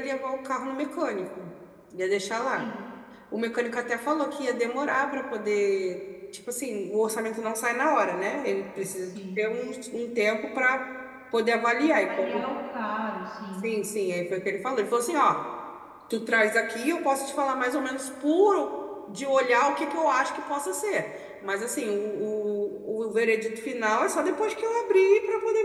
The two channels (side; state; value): both; identical; correlation 1.00